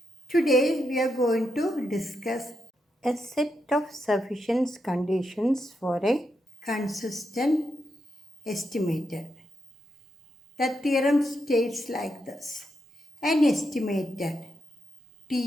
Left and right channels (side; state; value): both; normal; correlation 0.83